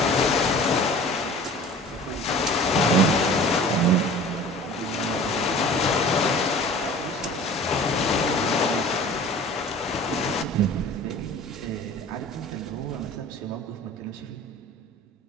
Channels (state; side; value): normal; both; correlation 0.43